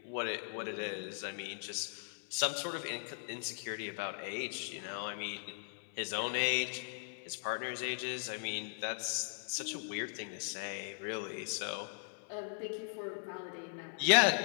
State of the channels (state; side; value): silent; right; 52 dB below the other